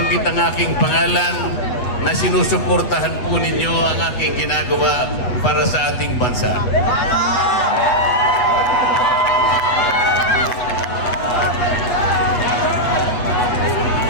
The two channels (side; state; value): right; late; 8.1 ms